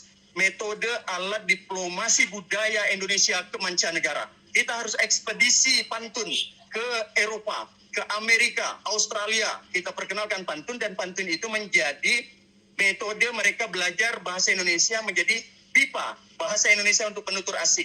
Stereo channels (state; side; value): identical; both; correlation 1.00